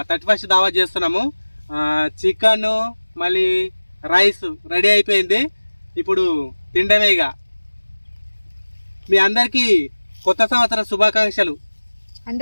31 దావా చేస్తున్నాము. చికెన్ మళ్ళీ రైస్ రెడీ అయిపోయింది. ఇప్పుడు తిండమేగా. మీ అందరికీ కొత్త సంవత్సర శుభాకాంక్షలు.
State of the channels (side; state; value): both; inverted; correlation -1.00